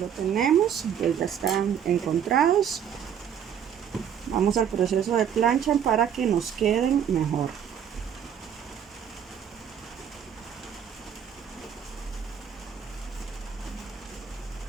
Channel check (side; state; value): left; quieter; 8.5 dB